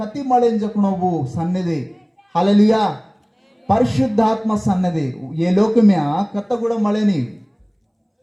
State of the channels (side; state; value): both; identical; correlation 1.00